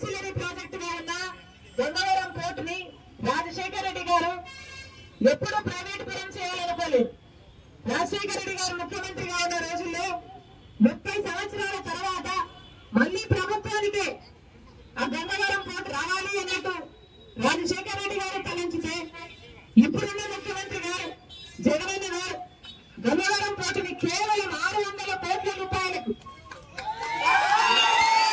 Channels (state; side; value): identical; both; correlation 1.00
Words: ప్రాజెక్ట్ గా ఉన్న గంగవరం పోర్ట్ ని రాజశేఖర రెడ్డి గారు ఎప్పుడూ ప్రైవేట్ పరం చేయాలనుకోలేదు. రాజశేఖర రెడ్డి గారు ముఖ్యమంత్రిగా ఉన్న రోజుల్లో 30 సంవత్సరాల తర్వాత మళ్లీ ప్రభుత్వానికే ఆ గంగవరం పోర్ట్ రావాలి అన్నట్టు రాజశేఖర రెడ్డి గారు తలంచితే ఇప్పుడున్న ముఖ్యమంత్రి గారు జగనన్న గారు గంగవరం పోర్టుని కేవలం 600